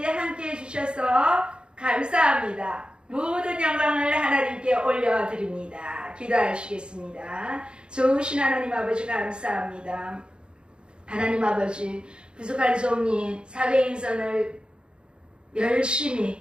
함께 해주셔서 감사합니다. 모든 영광을 하나님께 올려드립니다. 기도하시겠습니다. 좋으신 하나님 아버지 감사합니다. 하나님 아버지, 부족한 종이 사도행전을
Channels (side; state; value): left; late; 0.053 ms